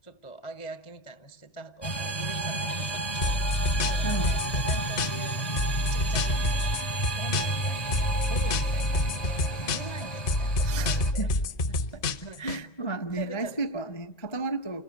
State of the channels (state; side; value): late; right; 1.7 ms